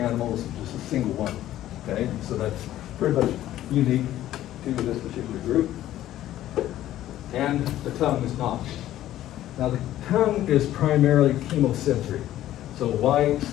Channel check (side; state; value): right; quieter; 13.4 dB